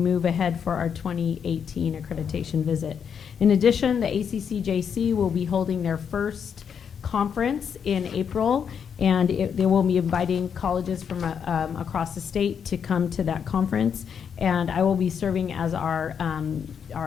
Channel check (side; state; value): right; quieter; 7.3 dB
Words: ahead for our 2018 accreditation visit. In addition, the ACCJC will be holding their first conference in April, and they will be inviting colleges from across the state to come to that conference. And I will be serving as our